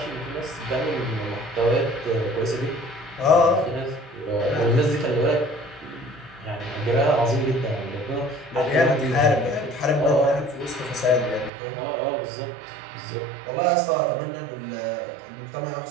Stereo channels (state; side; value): drops out; left; at 11.5 s